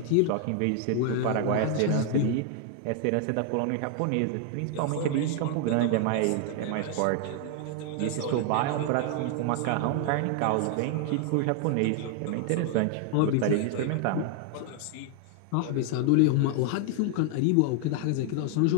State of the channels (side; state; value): both; different; correlation 0.00